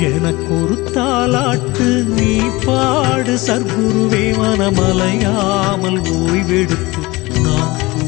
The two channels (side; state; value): right; quieter; 21.9 dB